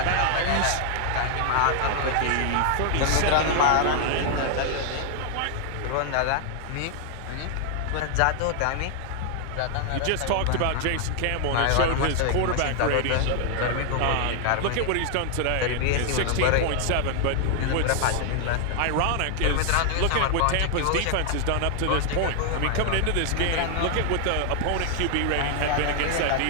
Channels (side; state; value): both; different; correlation 0.00